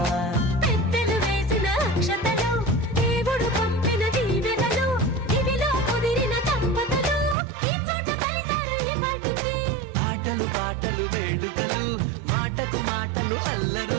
పెద్దలు వేసిన అక్షతలు దేవుడు పంపిన దీవెనలు ఇవిలో కుదిరిన దంపతులు ఈ చోట కలిసారు ఈ వాటికి ఆటలు పాటలు వేడుకలు మాటకు మాటలు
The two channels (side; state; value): left; drops out; at 7.4 s